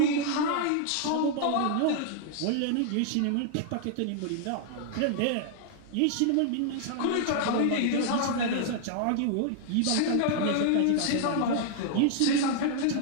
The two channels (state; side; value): different; both; correlation 0.00